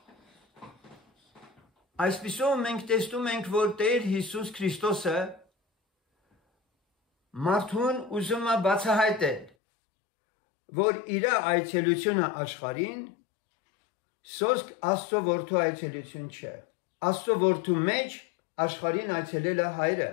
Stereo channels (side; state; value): right; drops out; at 9.5 s